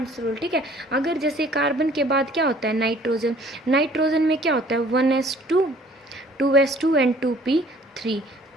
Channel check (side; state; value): both; normal; correlation 0.55